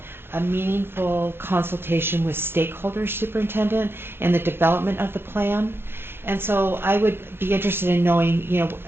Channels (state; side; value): late; left; 0.11 ms